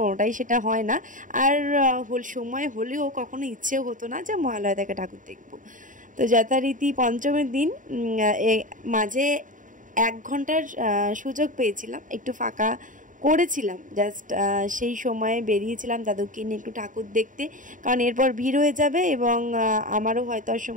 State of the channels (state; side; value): late; left; 0.38 ms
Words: সেটা হয় না। আর সময় হলেও কখনো ইচ্ছেও হতো না যে মহালয়া থেকে ঠাকুর দেখবো। তো যথারীতি পঞ্চমীর দিন মাঝে 1 ঘন্টার সুযোগ পেয়েছিলাম, একটু ফাঁকা করেছিলাম, জাস্ট সেই সময়ে বেরিয়েছিলাম দাদুকে নিয়ে একটু ঠাকুর দেখতে, কারণ এরপর ভিড় হয়ে যাবে এবং আমারও হয়তো আর